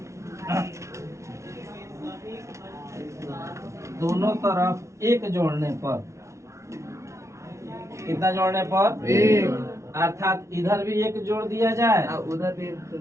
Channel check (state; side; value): late; left; 0.14 ms